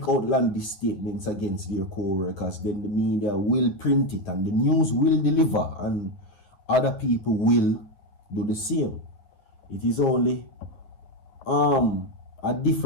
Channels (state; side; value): late; right; 10 ms